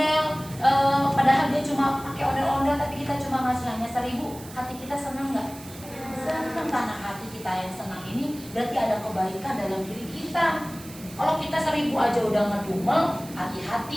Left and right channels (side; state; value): right; noise; hiss, 17 dB below the sound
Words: padahal dia cuma pakai ondel-ondel, tapi kita cuma ngasih hanya 1.000. Hati kita senang nggak? Senang, karena hati kita yang senang ini berarti ada kebaikan dalam diri kita. Kalau kita 1.000 aja udah ngedumel,